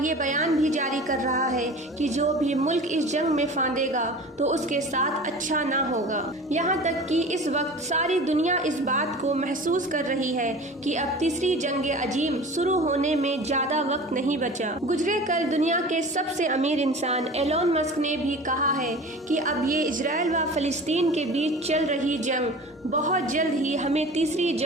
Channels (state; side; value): normal; both; correlation 0.38